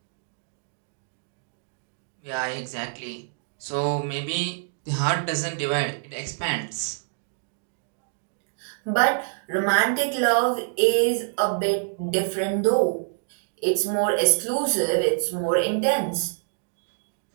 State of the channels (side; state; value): left; silent; digital silence